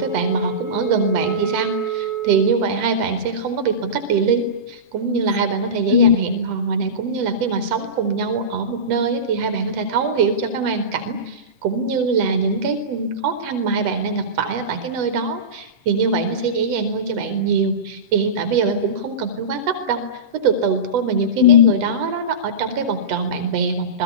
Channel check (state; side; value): late; left; 8.0 ms